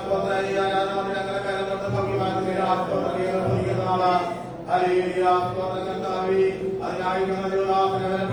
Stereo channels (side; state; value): both; identical; correlation 1.00